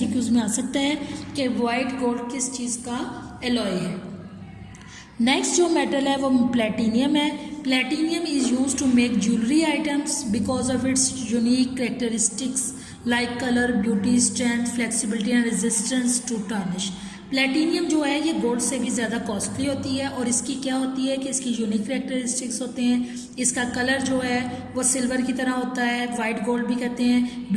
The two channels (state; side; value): identical; both; correlation 1.00